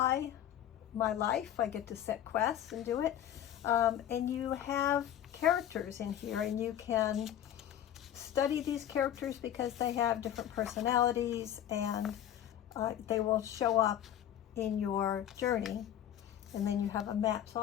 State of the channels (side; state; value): right; quieter; 10.9 dB